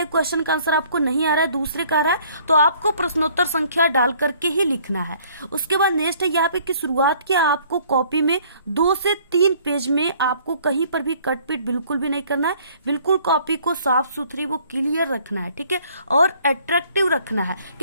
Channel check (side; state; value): both; inverted; correlation -0.58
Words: क्वेश्चन का आंसर आपको नहीं आ रहा है, दूसरे का आ रहा है, तो आपको प्रश्नोत्तर संख्या डाल करके ही लिखना है। उसके बाद नेक्स्ट है यहाँ पे कि शुरुआत किया आपको कॉपी में 2 से 3 पेज में आपको कहीं पर भी कटपीट बिल्कुल भी नहीं करना है। बिल्कुल कॉपी को साफ सुथरी वो क्लियर रखना है, ठीक है, और अट्रैक्टिव रखना है।